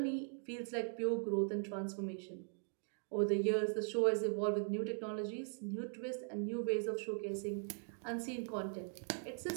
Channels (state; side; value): silent; left; 51 dB below the other